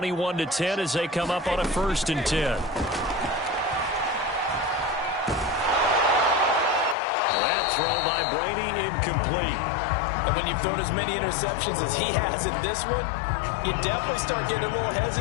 as they come up on a 1st and 10. That throw by Brady incomplete. And when you've thrown as many interceptions as he has in this one, you definitely start getting a little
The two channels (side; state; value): right; drops out; at 7.0 s